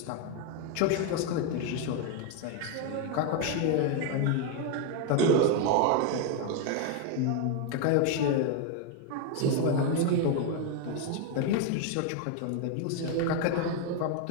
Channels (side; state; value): both; different; correlation 0.01